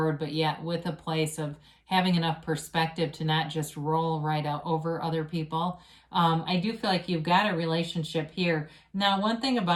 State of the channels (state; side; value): identical; both; correlation 1.00